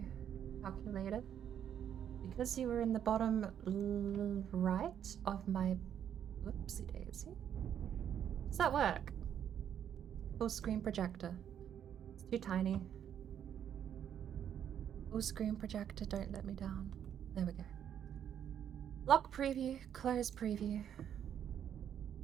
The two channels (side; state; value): left; quieter; 9.3 dB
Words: calculator. Because you were in the bottom right of my... Whoopsie daisy. Does that work? Full screen projector. It's too tiny. Full screen projector, don't let me down. There we go. Lock preview, close preview.